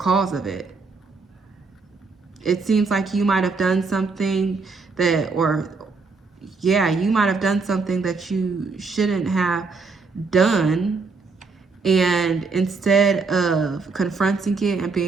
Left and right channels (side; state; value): left; quieter; 4.3 dB